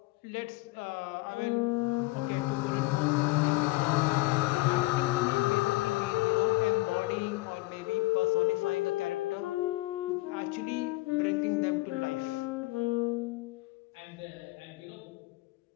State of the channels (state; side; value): quieter; right; 21.2 dB